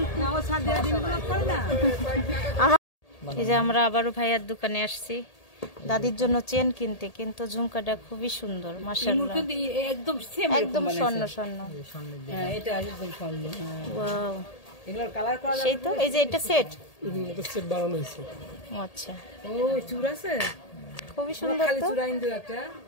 এই যে আমরা আবারও ভাইয়ার দোকানে আসছি দাদির জন্য চেন কিনতে, কিন্তু ঝুমকাটা খুবই সুন্দর মাশাআল্লাহ, একদম সেম, একদম স্বর্ণ স্বর্ণ। হ্যাঁ, এটা একদম স্বর্ণ। ওয়াও, এগুলোর কালার করা সেই তো। এই যে এটা সেট, এটা সেট বানানো হয়েছে। আচ্ছা, ও চূড় আছে, খুবই সুন্দর খালি তো। চূড়া ইন্দু একটা,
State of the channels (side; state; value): right; late; 1.8 ms